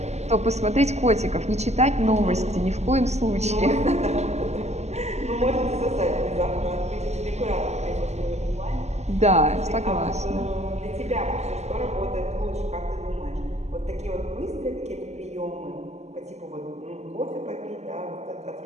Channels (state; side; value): late; left; 0.32 ms